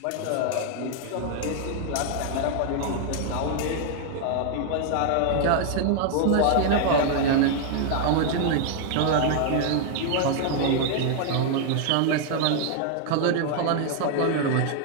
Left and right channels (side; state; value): both; different; correlation 0.00